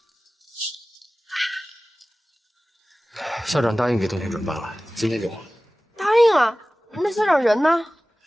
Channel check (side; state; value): both; normal; correlation 0.97